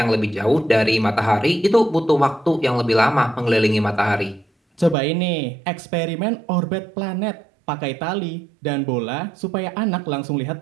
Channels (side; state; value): left; drops out; at 5.0 s